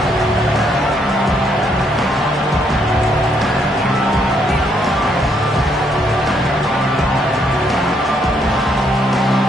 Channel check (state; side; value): normal; both; correlation 0.72